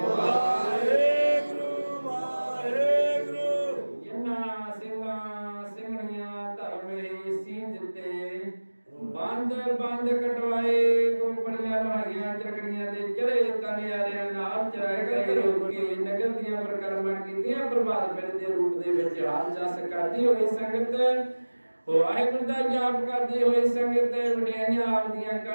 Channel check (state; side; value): inverted; both; correlation -1.00